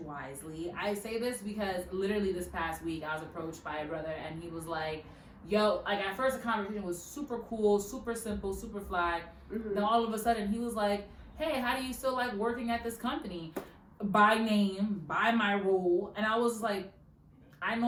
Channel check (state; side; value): identical; both; correlation 1.00